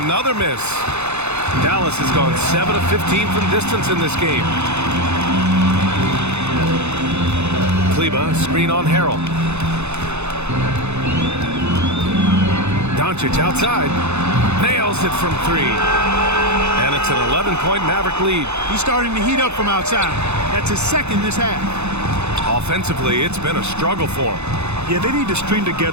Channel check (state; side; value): late; left; 0.81 ms